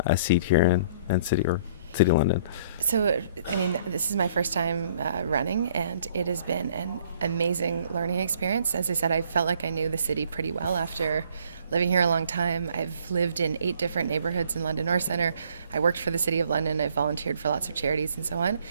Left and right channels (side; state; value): both; inverted; correlation -0.60